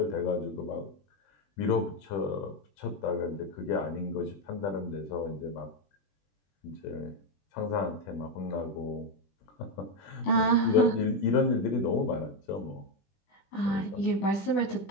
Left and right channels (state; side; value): late; right; 20 ms